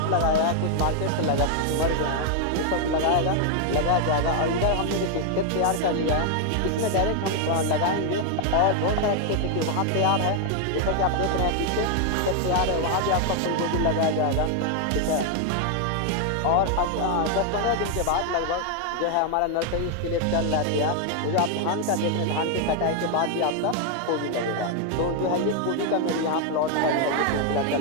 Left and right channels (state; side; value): different; both; correlation 0.00